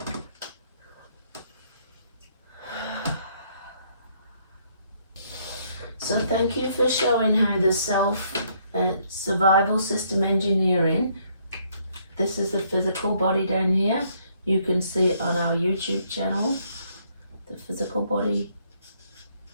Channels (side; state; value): both; inverted; correlation -0.68